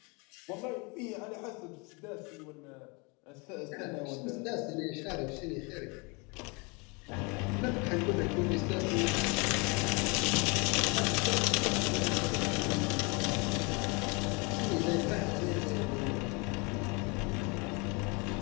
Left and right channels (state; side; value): quieter; right; 29.9 dB